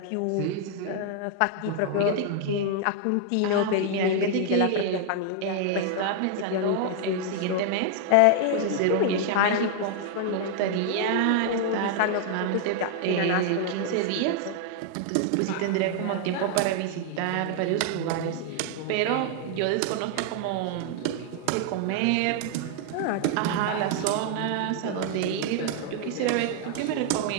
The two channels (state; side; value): different; both; correlation 0.00